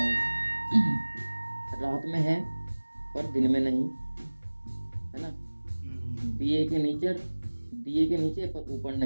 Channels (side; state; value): both; inverted; correlation -1.00